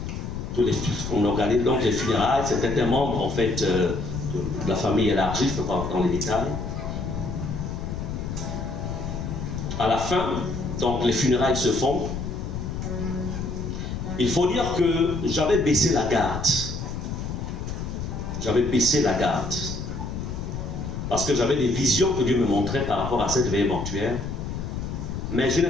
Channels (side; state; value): left; noise; rumble, 5 dB below the sound